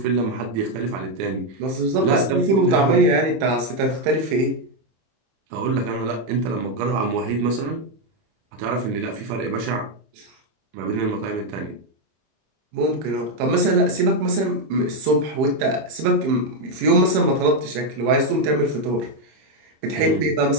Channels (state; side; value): late; left; 26 ms